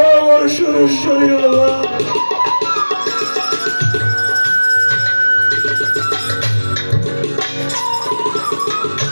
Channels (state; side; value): inverted; both; correlation -1.00